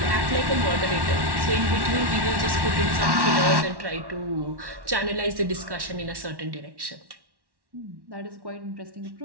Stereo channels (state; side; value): late; left; 1.1 ms